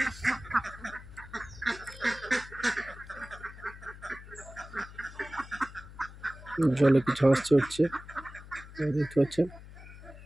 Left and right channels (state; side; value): noise; left; hum, 16 dB below the sound